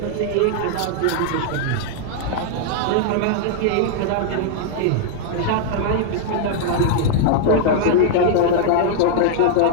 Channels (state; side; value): different; both; correlation -0.01